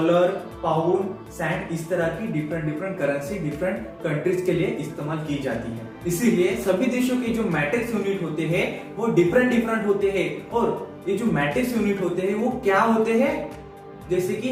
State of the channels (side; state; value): both; identical; correlation 1.00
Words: पाउंड, सैंड, इस तरह की different different currency different countries के लिए इस्तेमाल की जाती है। इसीलिए सभी देशों के जो मैट्रिक्स यूनिट होते हैं वो डिफरेंट डिफरेंट होते हैं। और ये जो मैट्रिक्स यूनिट होते हैं वो क्या होते हैं, जैसे कि